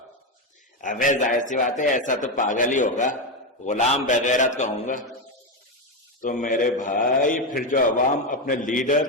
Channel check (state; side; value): normal; both; correlation 0.10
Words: ابے ظاہر سی بات ہے، ایسا تو پاگل ہی ہوگا، غلام بغیرت کہوں گا۔ تو میرے بھائی پھر جو عوام اپنے